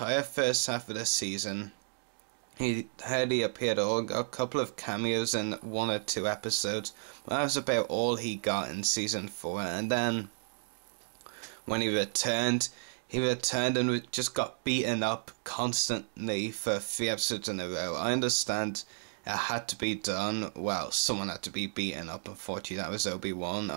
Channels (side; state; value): left; silent; digital silence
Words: first half of the season, he hardly appeared at all. Got a couple of cameos in 1 or 2 episodes, but that was about all he got in Season 4. And then when he returned and just got beaten up constantly for 3 episodes in a row. I understand it had to be done. Well, someone had to be beaten up. Unfortunately, that was Obi-Wan.